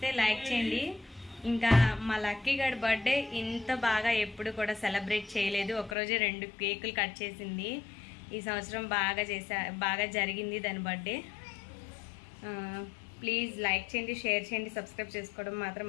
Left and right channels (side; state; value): right; drops out; at 6.0 s